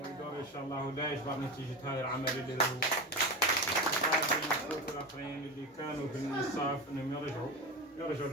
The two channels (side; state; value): both; normal; correlation 0.23